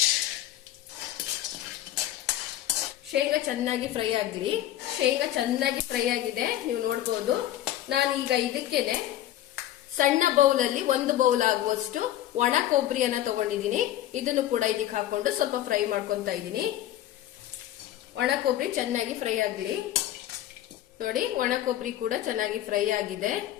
ಶೇಂಗಾ ಚೆನ್ನಾಗಿ ಫ್ರೈ ಆಗಲಿ. ಶೇಂಗಾ ಚೆನ್ನಾಗಿ ಫ್ರೈ ಆಗಿದೆ, ನೀವು ನೋಡಬಹುದು. ನಾನೀಗ ಇದಕ್ಕೇನೆ ಸಣ್ಣ ಬೌಲ್ ಅಲ್ಲಿ 1 ಬೌಲ್ ಆಗುವಷ್ಟು ಒಣ ಕೊಬ್ಬರಿಯನ್ನ ತಗೊಂಡಿದ್ದೀನಿ. ಇದನ್ನು ಕೂಡ ಇದಕ್ಕೆ ಹಾಕೊಂಡು ಸ್ವಲ್ಪ ಫ್ರೈ ಮಾಡ್ಕೊಂತಾ ಇದ್ದೀನಿ. ಒಣ ಕೊಬ್ಬರಿ ಚೆನ್ನಾಗಿ ಫ್ರೈ ಆಗಲಿ. ನೋಡಿ, ಒಣ ಕೊಬ್ಬರಿ ಕೂಡ ಚೆನ್ನಾಗಿ ಫ್ರೈ ಆಗಿದೆ.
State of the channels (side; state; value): right; quieter; 13.0 dB